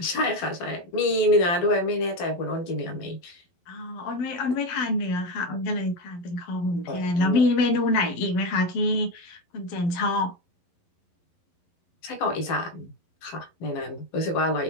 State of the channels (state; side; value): late; right; 11 ms